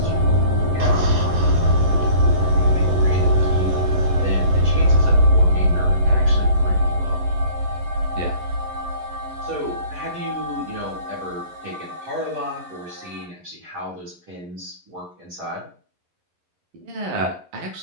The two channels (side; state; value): left; late; 11 ms